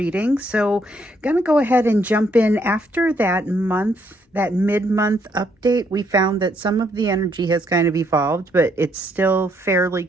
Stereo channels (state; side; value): normal; both; correlation 0.72